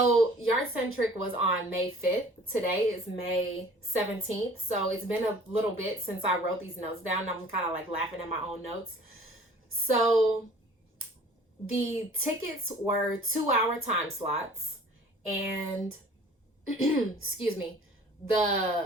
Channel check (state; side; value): normal; both; correlation 0.49